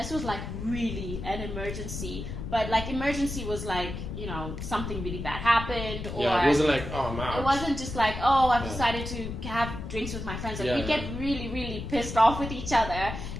it was like really an emergency, but like emergency was like, you know, something really bad happened, or it wasn't like, oh, I'm out. It wasn't just like, oh, I've decided to have drinks with my friends. Like, we'd get really, really pissed off with each other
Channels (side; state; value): left; noise; rumble, 7 dB below the sound